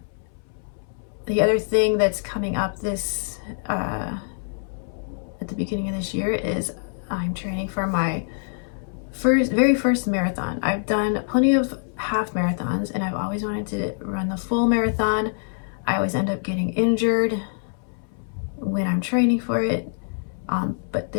The other thing that's coming up at the beginning of this year is I'm training for my very first marathon. I've done plenty of half marathons and I've always wanted to run the full marathon. I always end up getting injured when I'm training for it. But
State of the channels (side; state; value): right; silent; 61 dB below the other